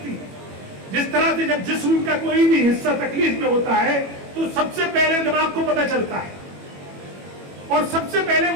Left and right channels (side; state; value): left; late; 21 ms